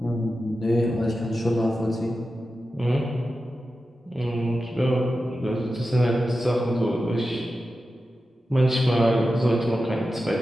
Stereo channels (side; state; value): both; normal; correlation 0.92